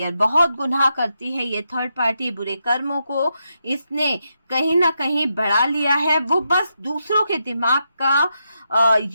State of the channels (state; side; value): inverted; both; correlation -0.84